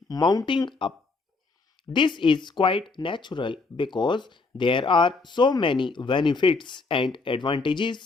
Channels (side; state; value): right; quieter; 3.9 dB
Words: mounting up. This is quite natural because there are so many benefits and